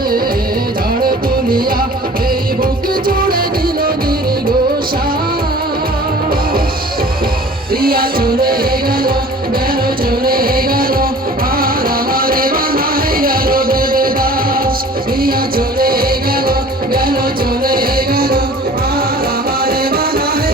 ঝড় তুলিয়া এই বুক জুড়ে দিল দীর্ঘ প্রিয়া চলে গেল গেল চলে গেল আর আমারে বানায় গেল দেবদাস প্রিয়া চলে গেল গেল চলে গেল আর আমারে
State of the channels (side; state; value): both; normal; correlation 0.46